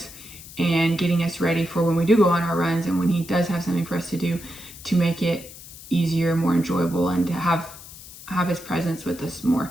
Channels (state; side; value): noise; left; hiss, 16 dB below the sound